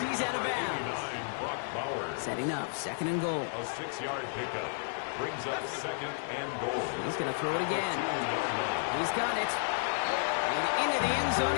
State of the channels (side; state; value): right; silent; digital silence